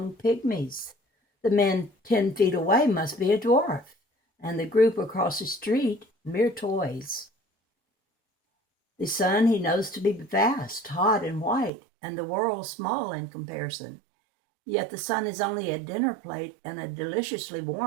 pygmies. The man 10 feet away must be a dwarf, and the group across the street mere toys. The sun he knows to be vast, hot, and white, and the world small in comparison. Yet the sun is only a dinner plate and is deliciously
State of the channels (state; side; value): drops out; left; at 11.7 s